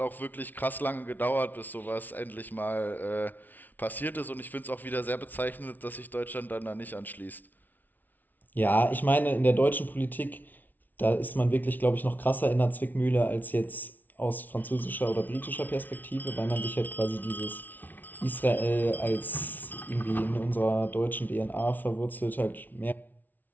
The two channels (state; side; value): late; right; 0.082 ms